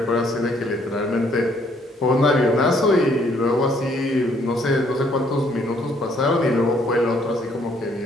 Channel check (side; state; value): both; normal; correlation 0.66